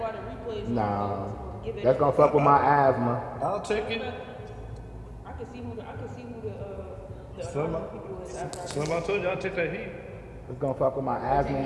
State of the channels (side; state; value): both; identical; correlation 1.00